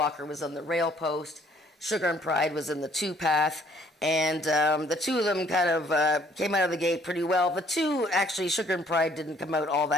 was on the rail post. Sugar and Pride was in the 2-path. And the two of them kind of came out of the gate pretty well. The two, actually, Sugar and Pride didn't come out all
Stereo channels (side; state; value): both; normal; correlation 0.62